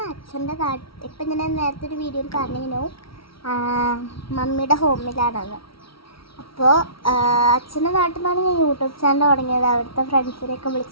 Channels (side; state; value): right; late; 0.75 ms